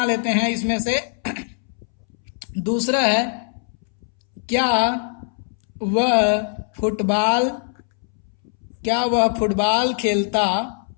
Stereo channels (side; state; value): right; silent; 64 dB below the other